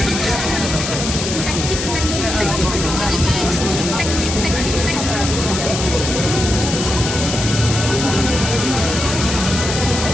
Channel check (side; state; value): left; noise; hiss, 4 dB below the sound